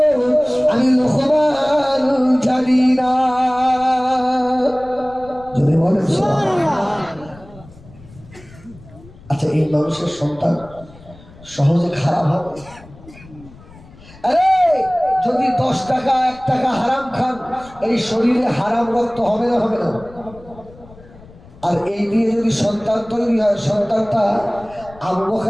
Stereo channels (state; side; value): noise; left; rumble, 22 dB below the sound